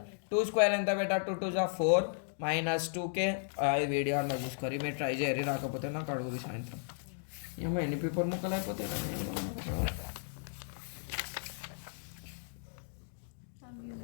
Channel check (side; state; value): right; silent; digital silence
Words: 2 స్క్వేర్ ఎంత పెట్టాలి? 2 2 4 మైనస్ 2k. ఈ వీడియో అలా చూసుకోరు, మీరు ట్రై చేయరు, రాకపోతే నాకు అడుగుది సాయంత్రం. ఏమో ఎన్ని పేపర్ ముక్కలు అయిపోతాయి.